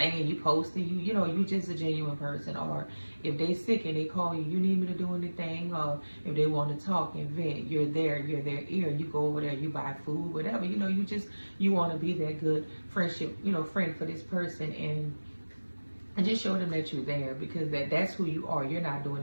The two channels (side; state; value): both; inverted; correlation -1.00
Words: you posting, you just a genuine person. Or if they sick and they call you, you need me to do anything, or if they want to talk and vent, you're there, you're their ear. You go over there, you buy food, whatever. You want to be that good friendship, friend for this person, and just show them that you're there, because that's who you are. You're not